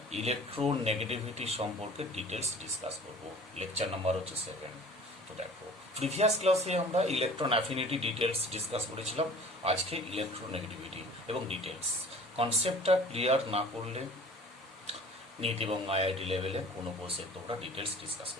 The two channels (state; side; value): normal; both; correlation 0.46